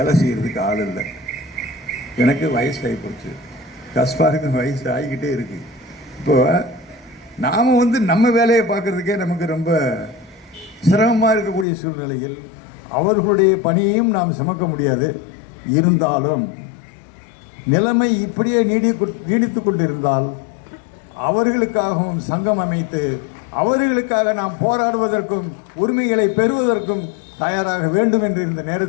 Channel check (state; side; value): drops out; right; at 11.7 s